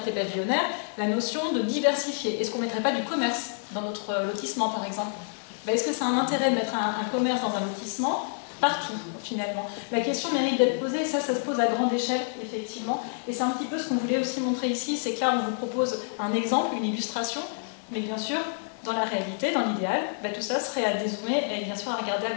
pavillonnaires la notion de diversifier. Est-ce qu'on ne mettrait pas du commerce dans notre lotissement par exemple? Est-ce que ça a un intérêt de mettre un commerce dans un lotissement? Partout, finalement. La question mérite d'être posée, ça se pose à grande échelle, effectivement. Et c'est un petit peu ce qu'on voulait aussi montrer ici, c'est que là, on vous propose un exemple, une illustration, mais bien sûr, dans la réalité, dans l'idéal, tout ça serait à dézoomer et bien sûr à regarder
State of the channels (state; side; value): silent; right; digital silence